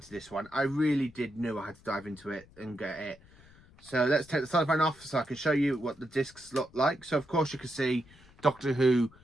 this one. I really did know I had to dive into it and get it. So let's take the cellophane off so I can show you what the discs look like. So of course you can see Doctor Who.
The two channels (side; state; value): left; noise; rumble, 25 dB below the sound